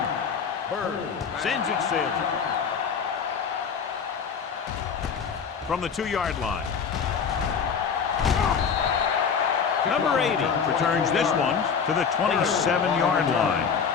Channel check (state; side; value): quieter; right; 6.5 dB